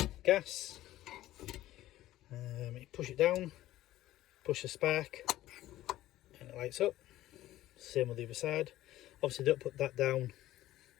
Gas, you push it down, push the spark and it lights up. Same with the other side. Obviously don't put that down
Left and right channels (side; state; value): right; quieter; 14.8 dB